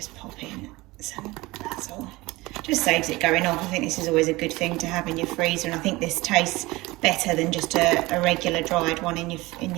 pop in some basil. Just saves it going off. I think this is always a good thing to have in your freezer, and I think this tastes better than just a regular dried one in your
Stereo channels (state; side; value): quieter; left; 21.0 dB